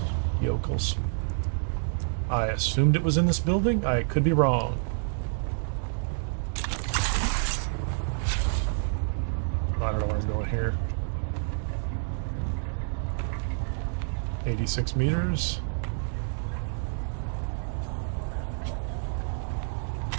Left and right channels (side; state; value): left; silent; digital silence